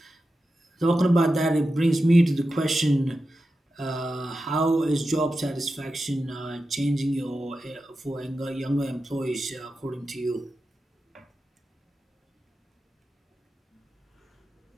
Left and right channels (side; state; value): both; normal; correlation 0.91